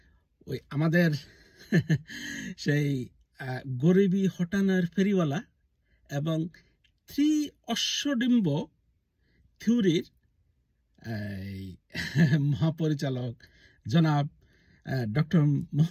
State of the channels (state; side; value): identical; both; correlation 1.00